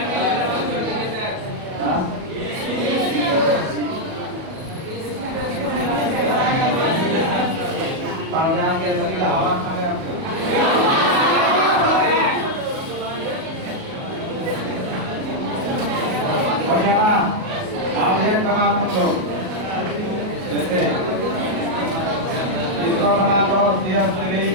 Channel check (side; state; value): left; late; 37 ms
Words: हवा खाने हो गया ना? आप एक बना तुम लोग। जैसे इसको बना लो CH3